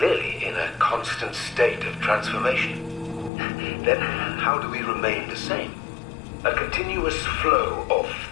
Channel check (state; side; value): drops out; right; at 3.3 s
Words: in a constant state of transformation. Then how do we remain the same? A continuous flow of